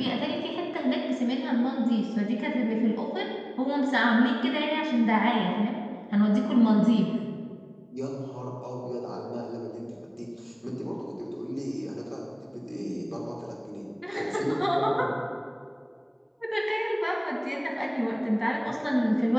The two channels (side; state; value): both; identical; correlation 1.00